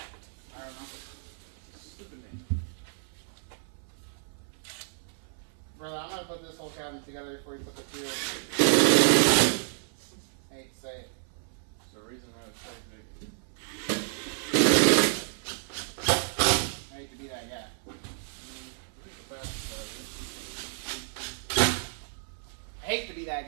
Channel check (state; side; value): silent; left; 57 dB below the other